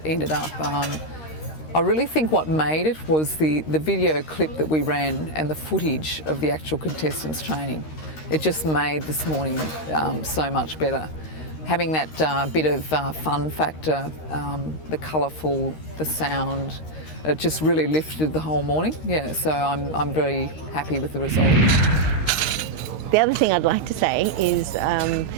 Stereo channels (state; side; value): late; right; 13 ms